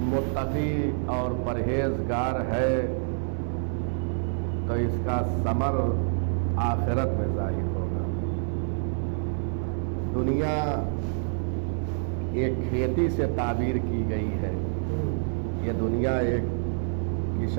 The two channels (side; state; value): left; silent; 60 dB below the other